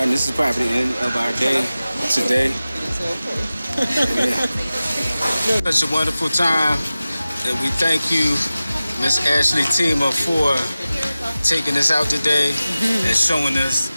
and this is probably the end of our day today. Yeah. Such a wonderful time, and we thank you, Miss Ashley Tima, for taking us out today and showing us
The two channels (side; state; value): both; inverted; correlation -0.96